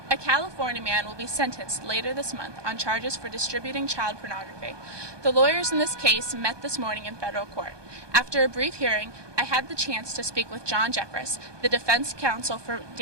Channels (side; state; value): left; late; 1.2 ms